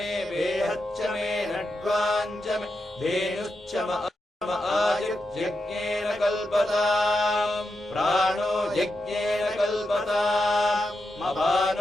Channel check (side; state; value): both; normal; correlation 0.87